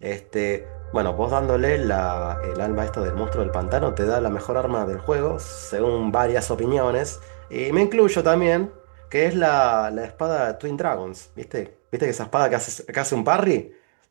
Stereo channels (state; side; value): silent; left; digital silence